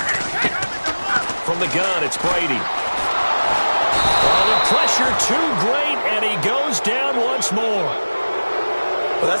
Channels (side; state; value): both; inverted; correlation -1.00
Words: From the gun, it's Brady. Oh, the pressure too great, and he goes down once more. Well,